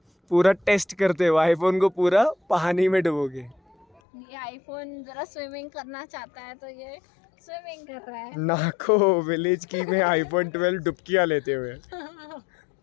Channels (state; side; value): drops out; right; at 4.0 s